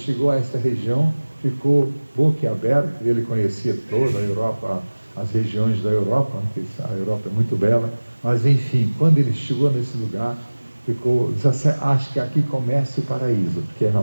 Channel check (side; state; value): both; inverted; correlation -1.00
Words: a esta região, ficou boquiaberto. Ele conhecia toda a Europa, as regiões da Europa, a Europa é muito bela, mas enfim, quando ele chegou nesse lugar, ficou, acho que aqui começa o paraíso, porque é